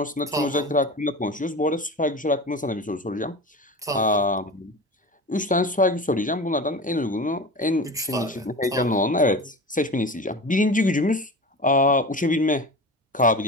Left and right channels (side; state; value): both; normal; correlation 0.31